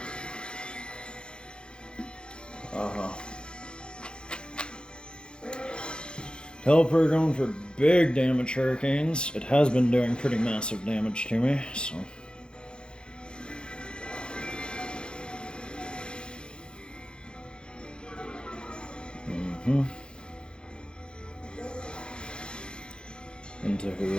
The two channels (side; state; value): right; late; 0.051 ms